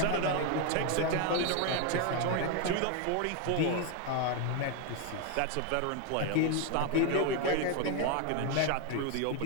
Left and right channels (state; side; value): different; both; correlation 0.01